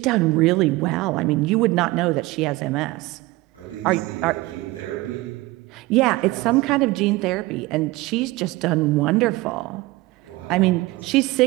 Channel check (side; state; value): left; quieter; 20.4 dB